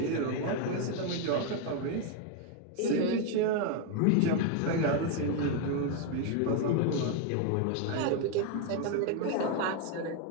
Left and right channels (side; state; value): both; different; correlation 0.01